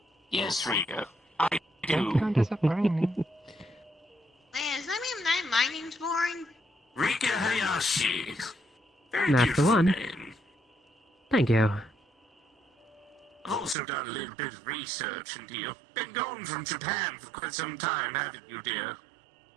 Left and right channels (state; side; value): drops out; left; at 13.8 s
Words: Yes, Rika, I do. Disappointing. Liz, my name's boring. Rika Hayashi. Very That's the beautiful one. name. Thank you. I've also done a little bit of research into you. Been gone from Japan for quite some time, haven't you,